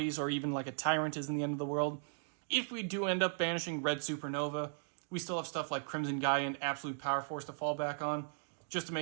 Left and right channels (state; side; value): silent; left; digital silence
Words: or even like a Tyrant isn't the end of the world. If we do end up banishing Red Supernova, we still have stuff like Crimson Gaia and Absolute Power Force to fall back on, just to